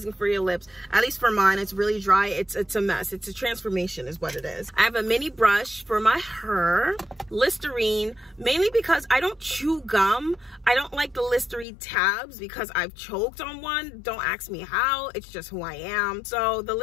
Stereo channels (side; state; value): right; drops out; at 11.7 s